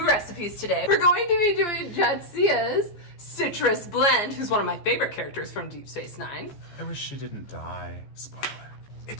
recipes today. We're going to be doing Jadzia's citrus blend, who's one of my favorite characters from Deep Space Nine. I wish she didn't die. Spoiler.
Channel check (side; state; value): right; late; 14 ms